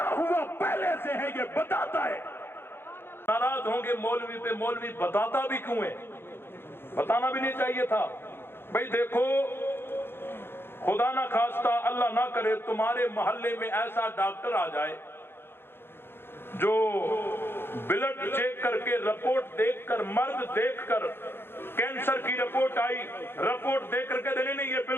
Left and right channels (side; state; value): right; late; 0.11 ms